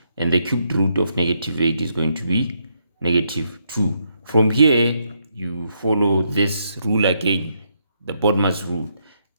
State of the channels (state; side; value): inverted; both; correlation -0.77